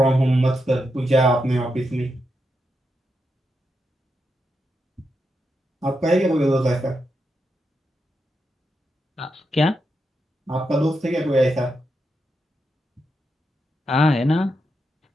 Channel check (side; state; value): both; normal; correlation 0.85